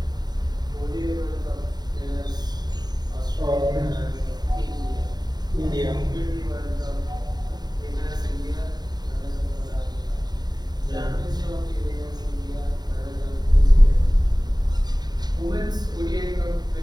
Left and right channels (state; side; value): late; left; 0.20 ms